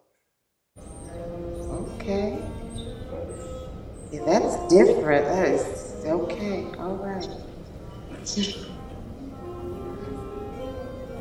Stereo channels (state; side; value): identical; both; correlation 1.00